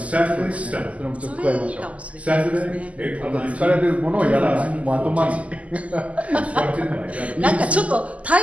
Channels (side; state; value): left; late; 0.068 ms